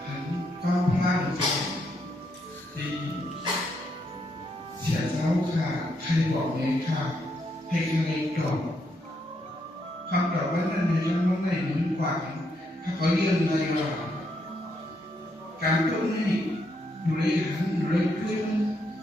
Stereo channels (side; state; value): both; normal; correlation 0.77